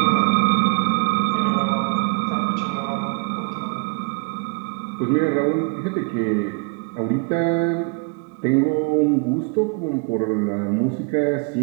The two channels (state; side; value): quieter; left; 35.4 dB